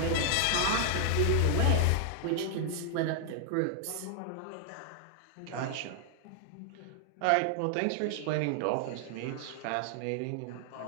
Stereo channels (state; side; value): different; both; correlation 0.00